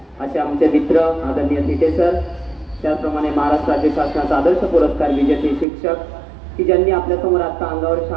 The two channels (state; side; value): drops out; left; at 5.7 s